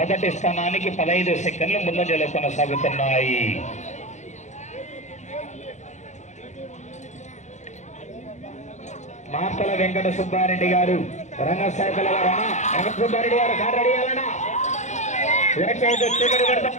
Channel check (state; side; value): late; right; 0.34 ms